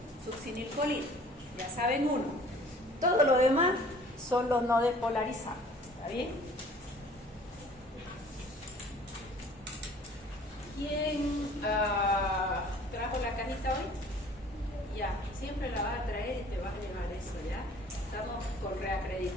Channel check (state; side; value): normal; both; correlation 0.51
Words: succinilcolina. Ya saben uno. Todo lo demás son los no despolarizantes. ¿Está bien? ¿Quién trajo la cajita hoy? Ya, siempre la vas a traer y te vas a llevar eso, ¿ya? Estamos con